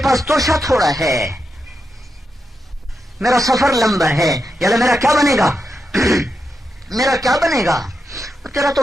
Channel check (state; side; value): normal; both; correlation 0.87